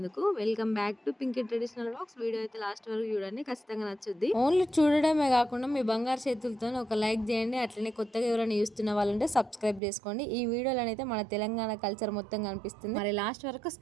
Welcome back to Pinky traditional vlogs. Video అయితే లాస్ట్ వరకు చూడండి, ఖచ్చితంగా నచ్చుద్ది. ఓన్లీ చూడడమే కాకుండా మీ బంగారు చేతులతో ఒక లైక్ చేయండి. అట్లనే కొత్తగా ఎవరైనా చూస్తున్న వాళ్ళంటే సబ్స్క్రైబ్ చేసుకోండి. ఈ వీడియోలో అయితే మన తెలంగాణ కల్చర్ మొత్తం కనిపిస్తుంది. మరి లాస్ట్ వరకు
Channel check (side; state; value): left; drops out; at 9.8 s